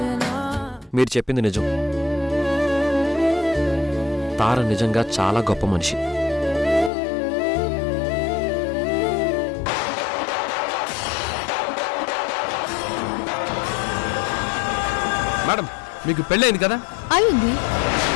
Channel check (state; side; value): drops out; right; at 6.9 s